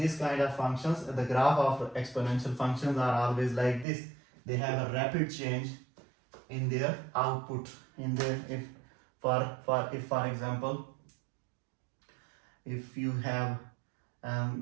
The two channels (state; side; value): drops out; left; at 3.9 s